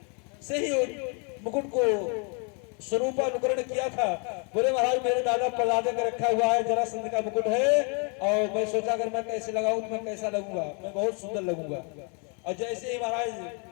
से ही मुकुट को स्वरूपानुकरण किया था। बोले महाराज मेरे दादा परदादे का रखा हुआ है, जरासंध का मुकुट है, और मैं सोचा अगर मैं कैसे लगाऊं तो मैं कैसा लगूंगा, मैं बहुत सुंदर लगूंगा। और जैसे ही महाराज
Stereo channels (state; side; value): quieter; right; 36.4 dB